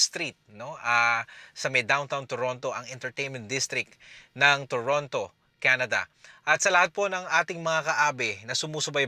Street, no? Sa may downtown Toronto, ang entertainment district ng Toronto, Canada. At sa lahat po ng ating mga kaabe na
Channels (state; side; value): identical; both; correlation 1.00